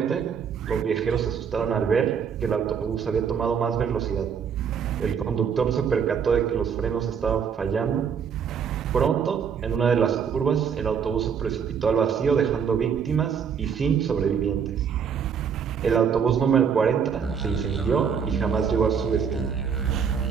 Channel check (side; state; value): left; quieter; 7.0 dB